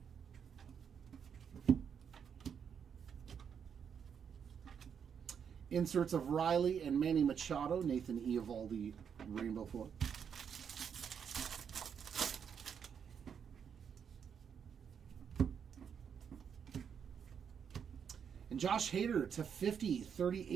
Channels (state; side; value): quieter; left; 7.4 dB